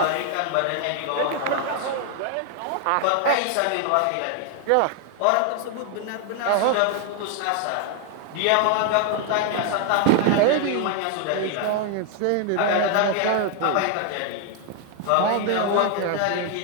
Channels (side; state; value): both; different; correlation 0.00